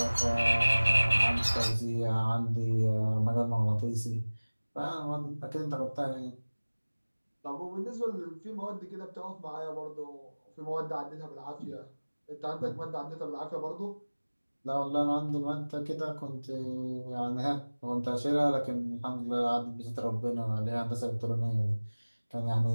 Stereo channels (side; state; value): both; inverted; correlation -1.00